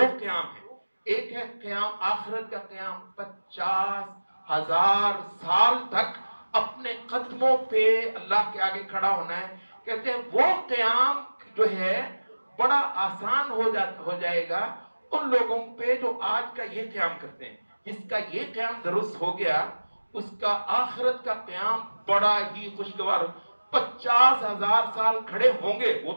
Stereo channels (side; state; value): both; inverted; correlation -1.00